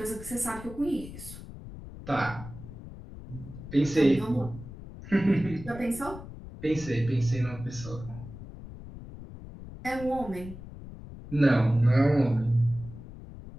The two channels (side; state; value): left; noise; rumble, 13 dB below the sound